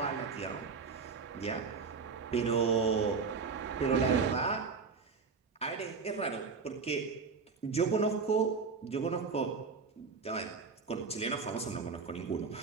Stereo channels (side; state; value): left; quieter; 5.0 dB